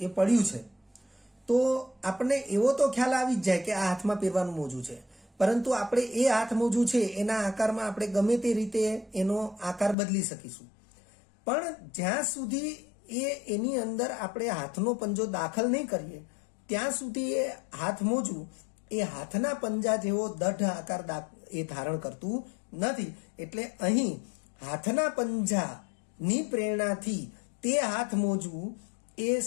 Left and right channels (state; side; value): drops out; right; at 10.0 s